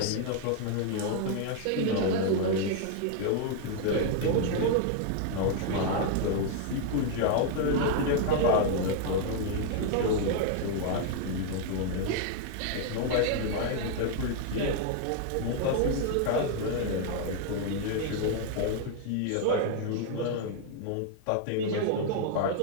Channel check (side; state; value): both; different; correlation 0.00